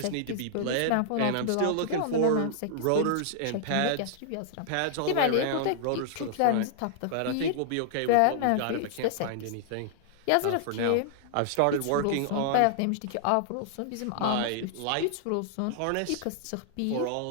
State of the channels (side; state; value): both; different; correlation -0.01